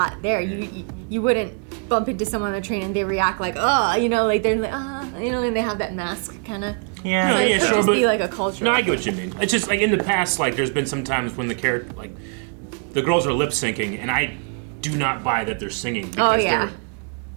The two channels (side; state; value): left; quieter; 39.1 dB